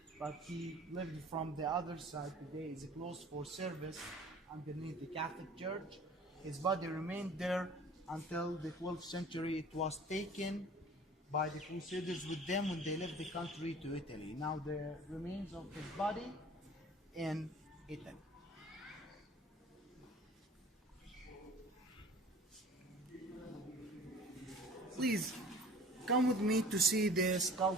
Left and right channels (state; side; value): normal; both; correlation 0.46